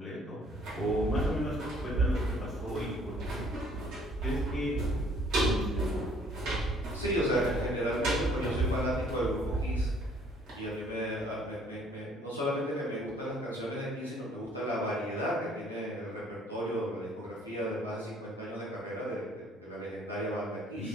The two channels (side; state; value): both; normal; correlation 0.60